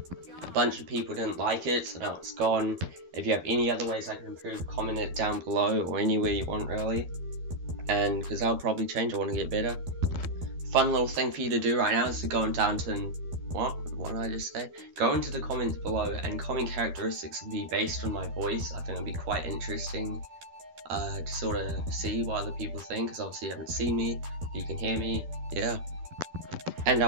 A bunch of people didn't like it, so now it's gone. If you have any other ways I can improve, comment it down below or anywhere you want really. And because I'll probably change, I want to get better. Fun little thing for you to do right now is to go down to, what did I just say? Go into the comments below and comment characteristics of me based on my voice. I think it'll be quite interesting to sort of see what other people think, because obviously you haven't seen me, you can hear me, yeah. And I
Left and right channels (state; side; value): late; left; 12 ms